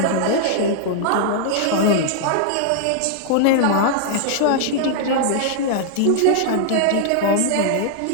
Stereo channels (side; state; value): both; different; correlation -0.01